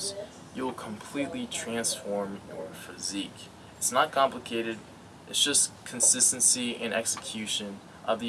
you'll completely transform your physique. It's not complicated, it's just consistency and execution of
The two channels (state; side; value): identical; both; correlation 1.00